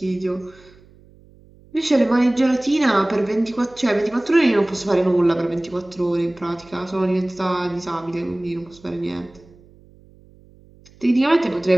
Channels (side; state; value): right; noise; hum, 26 dB below the sound